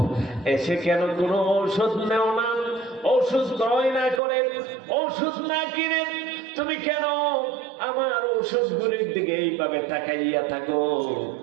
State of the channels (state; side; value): drops out; left; at 4.2 s